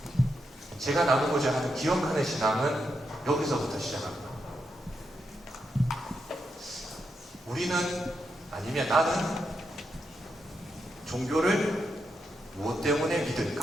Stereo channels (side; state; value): both; normal; correlation 0.83